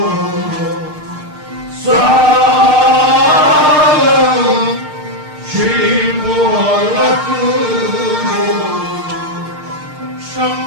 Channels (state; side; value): late; left; 6.6 ms